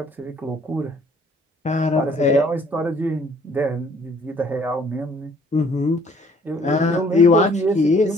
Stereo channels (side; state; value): both; normal; correlation 0.59